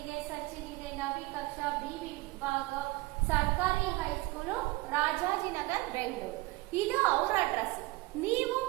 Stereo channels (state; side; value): quieter; left; 21.2 dB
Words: ಸಚಿನ್ ಇದೆ, ನವಿ ಕಕ್ಷಾ, ಬಿ ವಿಭಾಗ, ಸರ್ಕಾರಿ ಹೈಸ್ಕೂಲು, ರಾಜಾಜಿನಗರ್, ಬೆಂಗಳೂರು. ಇದು ಅವರ ಅಡ್ರೆಸ್. ನೀವು